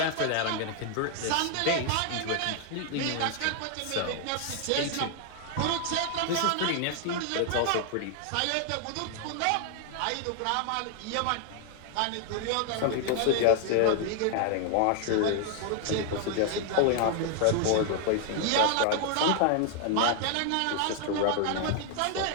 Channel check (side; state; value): both; different; correlation 0.00